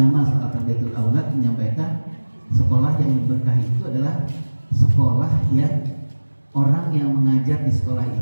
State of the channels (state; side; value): inverted; both; correlation -1.00